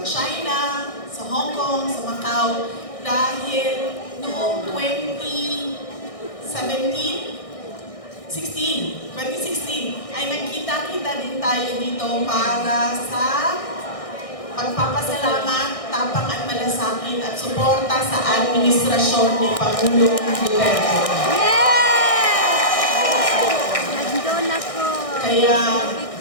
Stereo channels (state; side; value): late; right; 1.6 ms